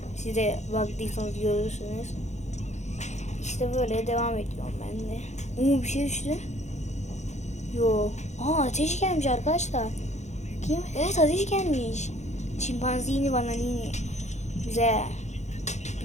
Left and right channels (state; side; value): late; right; 0.33 ms